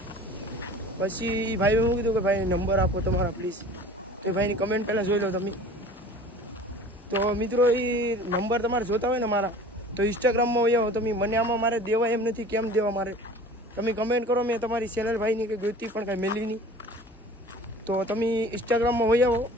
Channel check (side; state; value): both; normal; correlation 0.43